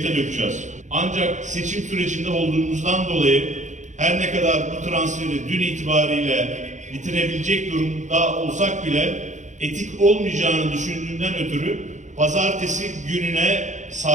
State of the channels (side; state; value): left; late; 0.35 ms